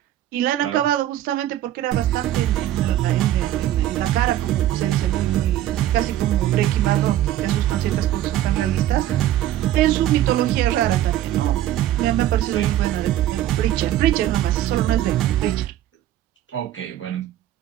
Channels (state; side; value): quieter; left; 13.0 dB